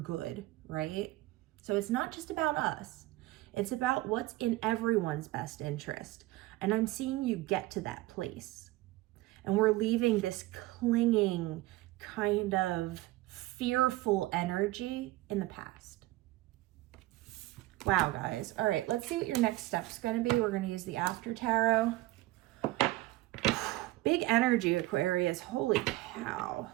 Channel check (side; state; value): left; quieter; 18.3 dB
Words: right? So it's not just about us. It's about what's in everyone's best interest. And I'm seeing you get to that place. And we're leaving this clinging, kind of fearful energy in the past. Wow, guys. All right, let's see what your next step's going to be. We're going to use the After Tarot. Big energy, Aquarius. Holy cow.